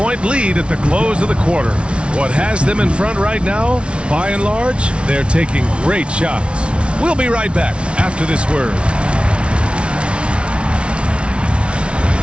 lead at the close of the quarter. What has them in front right now, by and large, they're taking great shots. We'll be right back after this word.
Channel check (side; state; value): left; late; 0.059 ms